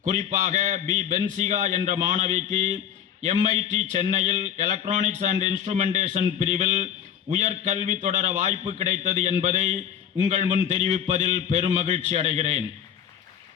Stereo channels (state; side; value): quieter; right; 9.2 dB